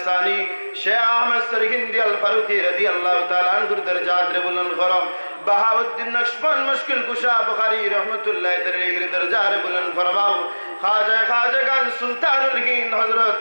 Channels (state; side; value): inverted; both; correlation -1.00